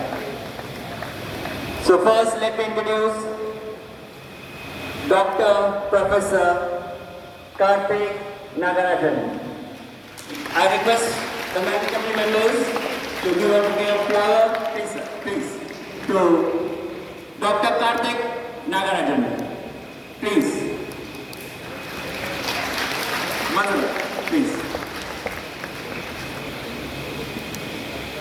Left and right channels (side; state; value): both; identical; correlation 1.00